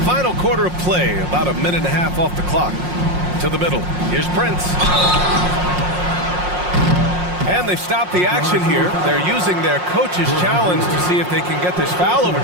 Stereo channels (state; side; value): late; left; 5.6 ms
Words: Final quarter of play, about a minute and a half off the clock. To the middle. Here's Prince. And they've stopped the action here. They're using their coach's challenge to see if they can get this foul